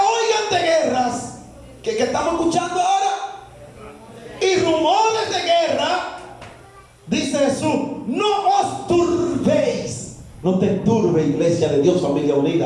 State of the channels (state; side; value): identical; both; correlation 1.00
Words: de guerras, que estamos escuchando ahora, y rumores de guerra, dice Jesús, no os turbéis. No te turbe, iglesia de Dios, familia